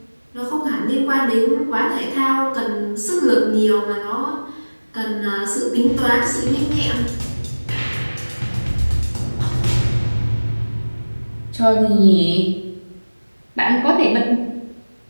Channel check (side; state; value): both; inverted; correlation -1.00